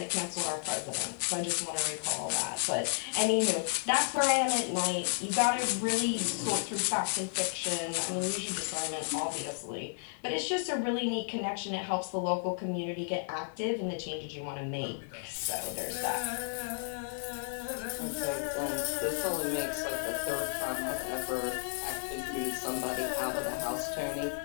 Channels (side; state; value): right; silent; digital silence